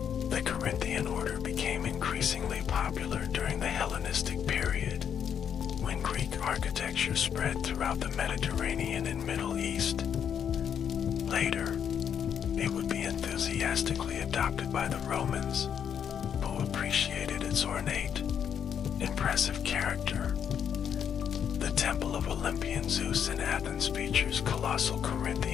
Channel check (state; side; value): quieter; right; 8.3 dB